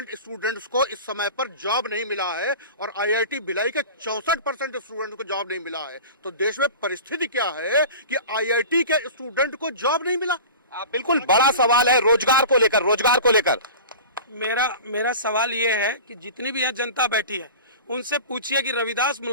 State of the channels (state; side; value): inverted; both; correlation -0.36